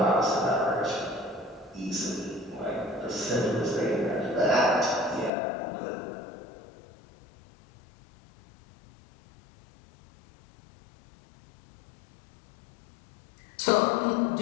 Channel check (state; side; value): drops out; right; at 5.3 s